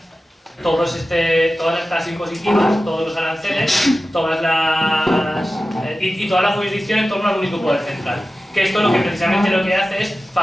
todas las tasas impositivas, todos los aranceles, y toda la jurisdicción en torno al único poder central. Que esto precisamente lo que hace es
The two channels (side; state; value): both; normal; correlation 0.95